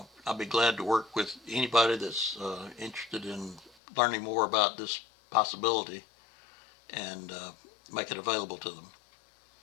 be glad to work with anybody that's interested in learning more about this possibility and make it available to them.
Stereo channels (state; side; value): drops out; right; at 3.8 s